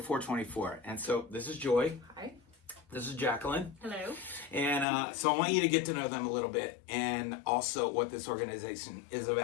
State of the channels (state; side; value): drops out; right; at 4.9 s